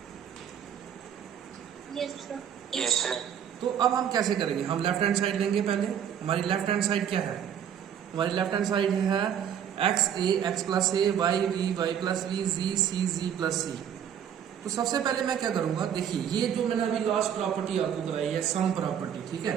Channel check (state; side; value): quieter; left; 9.0 dB